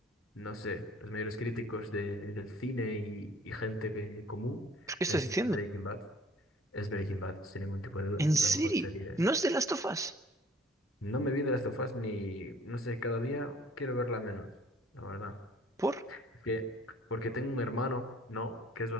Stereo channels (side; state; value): both; normal; correlation 0.55